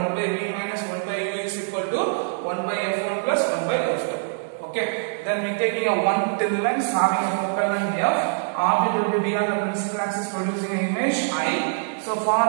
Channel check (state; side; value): silent; left; digital silence